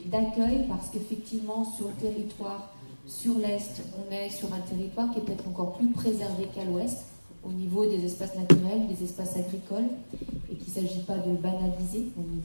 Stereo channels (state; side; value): inverted; both; correlation -1.00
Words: D'accueil parce qu'effectivement, sur le territoire, sur l'Est, on est sur un territoire qui est peut-être encore plus préservé qu'à l'Ouest, au niveau des espaces naturels, des espaces agricoles, et qu'il ne s'agit pas de le banaliser, on y